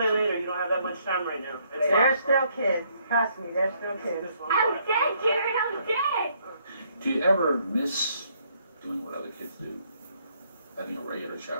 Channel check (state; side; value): inverted; both; correlation -0.69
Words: later. You don't have that much time right now. They're still kids. Trust me, they're still kids. I'm dead, Jared. I'm dead. Do you ever miss doing what other kids do? Having a regular